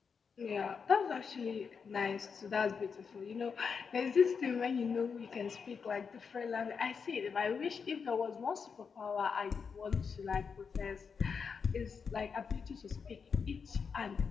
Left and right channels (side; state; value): right; quieter; 5.9 dB